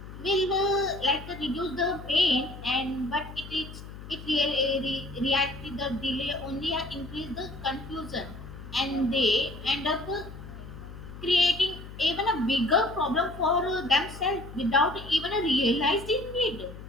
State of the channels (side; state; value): left; noise; hum, 13 dB below the sound